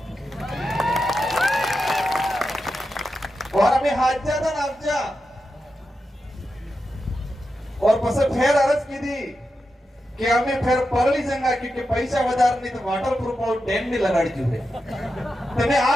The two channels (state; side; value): normal; both; correlation 0.89